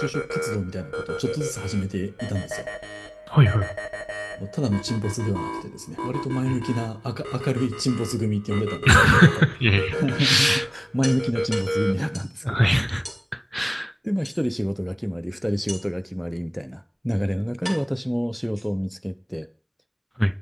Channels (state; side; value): identical; both; correlation 1.00